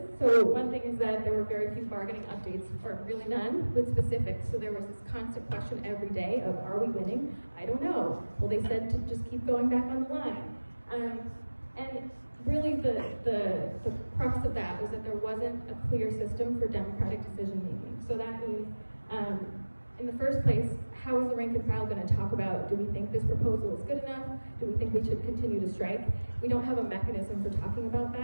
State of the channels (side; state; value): both; inverted; correlation -1.00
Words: So one thing is that there were very few bargaining updates, or really none, with specifics. So there was this constant question every day of, are we winning? I don't know. Well, they said to just keep going back on the line. And really the crux of that was that there wasn't a clear system for democratic decision making. So that means, in the first place, how is the rank and file going to talk about, do we think this proposal is good enough? Do we think we should continue to strike? We don't have a mechanism for talking about